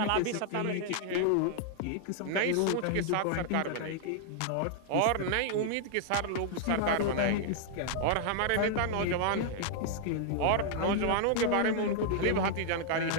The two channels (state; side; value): different; both; correlation -0.01